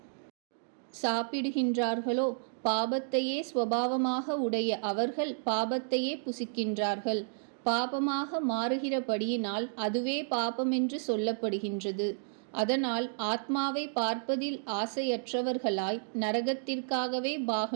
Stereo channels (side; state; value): left; silent; digital silence